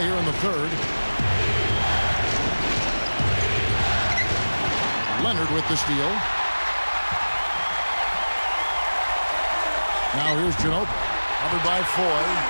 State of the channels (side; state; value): both; inverted; correlation -1.00